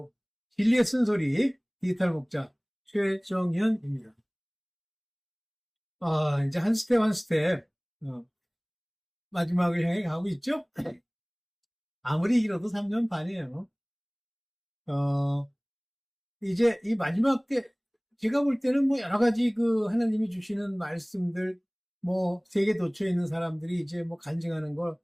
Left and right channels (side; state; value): both; identical; correlation 1.00